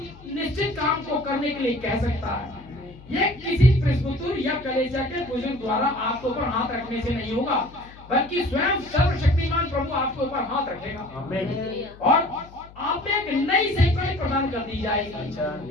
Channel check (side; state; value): left; noise; hum, 21 dB below the sound